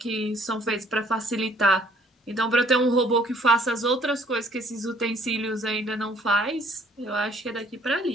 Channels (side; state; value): both; normal; correlation 0.60